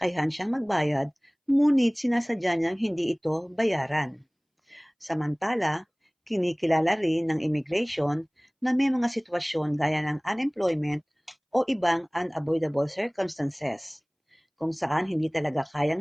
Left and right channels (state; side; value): identical; both; correlation 1.00